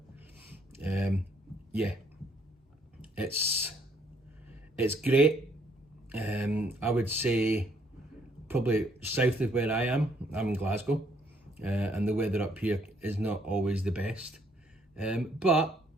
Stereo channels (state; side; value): normal; both; correlation 0.68